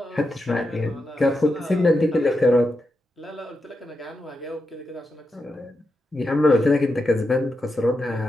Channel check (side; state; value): both; normal; correlation 0.87